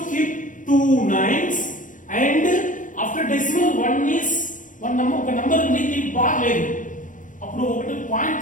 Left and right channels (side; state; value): right; late; 0.38 ms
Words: keep 2 9s and after decimal 1 is 1 number, ఒక నంబర్ ఉంది, దీనికి బార్ లేదు. అప్పుడు ఒకటి పాయింట్